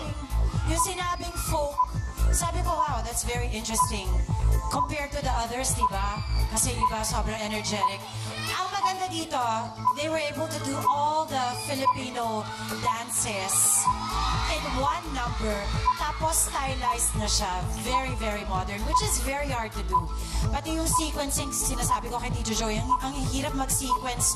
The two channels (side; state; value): both; identical; correlation 1.00